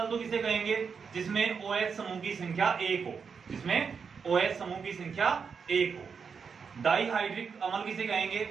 तो किसे कहेंगे? जिसमें OH समूह की संख्या 1 हो, जिसमें OH समूह की संख्या 1 हो। डाइहाइड्रिक अम्ल किसे कहेंगे?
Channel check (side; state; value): left; quieter; 6.0 dB